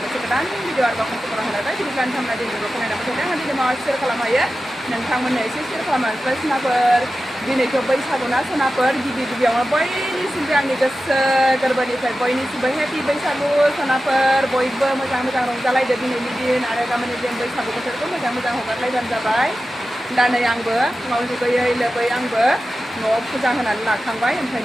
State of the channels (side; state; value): both; normal; correlation 0.93